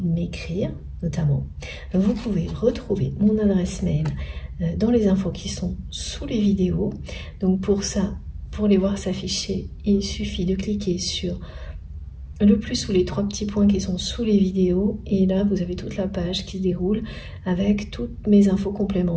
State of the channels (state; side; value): identical; both; correlation 1.00